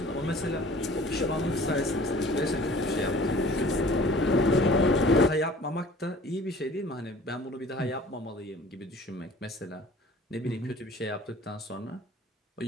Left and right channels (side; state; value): both; normal; correlation 0.48